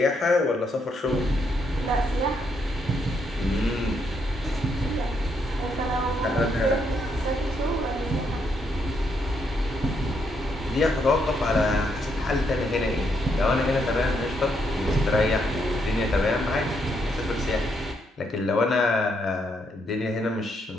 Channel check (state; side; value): normal; both; correlation 0.76